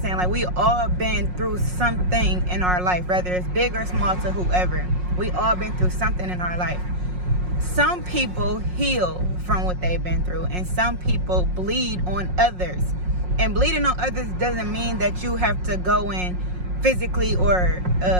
Like, we all been through something in our life, whether it's big or small to whoever. We all been through something in our life. Some people heal from what they've been through, and some people bleed on others. And bleeding on others doesn't mean that you have to go in physically or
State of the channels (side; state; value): left; late; 5.5 ms